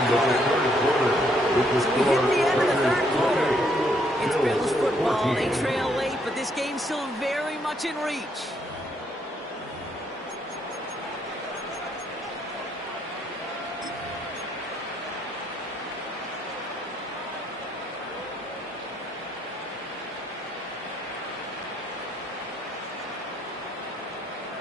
of this 3rd quarter. So we hit the end of the 3rd quarter. It's Bills football. They trail late, but this game's still very much in reach.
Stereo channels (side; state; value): both; normal; correlation 0.71